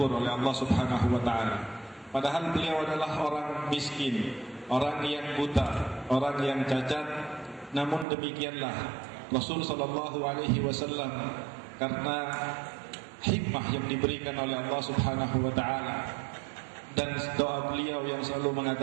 oleh Allah Subhanahu wa taala." Padahal beliau adalah orang miskin, orang yang buta, orang yang cacat. Namun demikianlah Rasul sallallahu alaihi wasallam karena hikmah yang diberikan oleh Allah Subhanahu wa taala dan doa beliau yang selalu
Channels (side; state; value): left; drops out; at 8.1 s